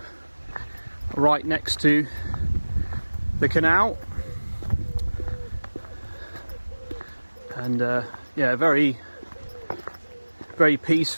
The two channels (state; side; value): inverted; both; correlation -1.00